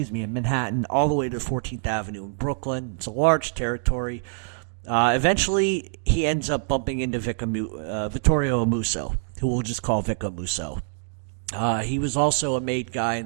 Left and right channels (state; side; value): silent; left; 60 dB below the other